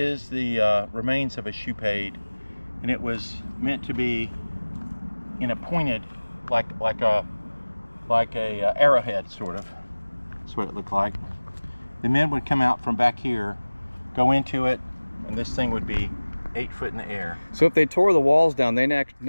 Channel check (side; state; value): both; inverted; correlation -1.00